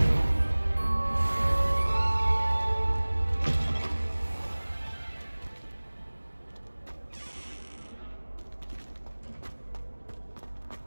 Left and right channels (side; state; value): both; inverted; correlation -1.00